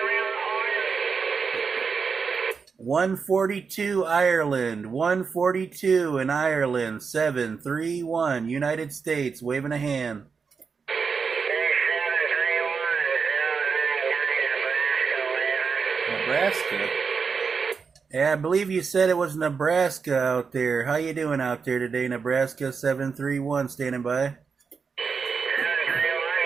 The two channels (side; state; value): left; quieter; 5.5 dB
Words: 142 Ireland, 142 in Ireland, 731 United States, waving a hand. Nebraska? Yeah, I believe you said it was Nebraska out there. How you doing out there today, Nebraska? 731, standing by.